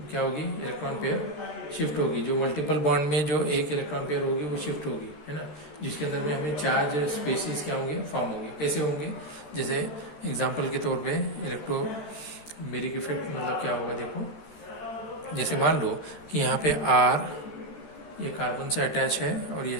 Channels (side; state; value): right; late; 13 ms